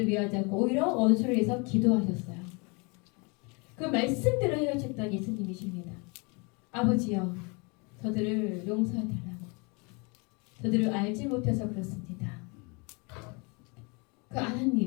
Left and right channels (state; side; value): quieter; right; 30.6 dB